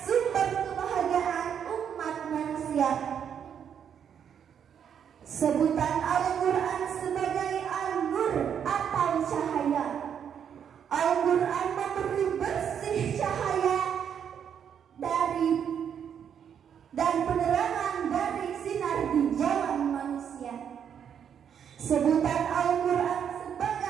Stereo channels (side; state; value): left; quieter; 8.2 dB